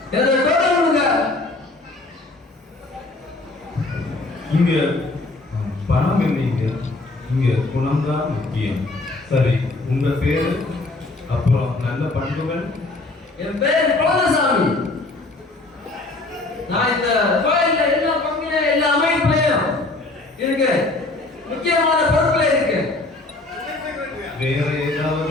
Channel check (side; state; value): right; quieter; 3.1 dB